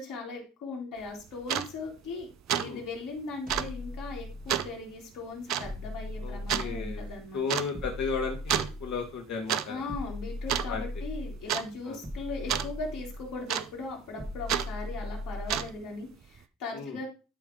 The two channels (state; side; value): normal; both; correlation 0.40